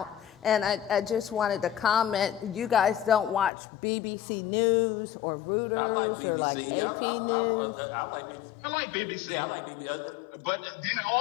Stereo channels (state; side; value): drops out; right; at 3.5 s